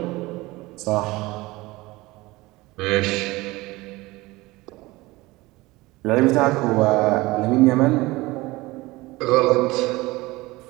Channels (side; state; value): left; quieter; 20.8 dB